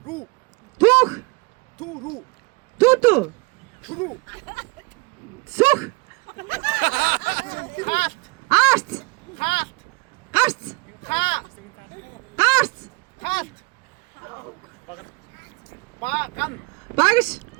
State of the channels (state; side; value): quieter; left; 27.8 dB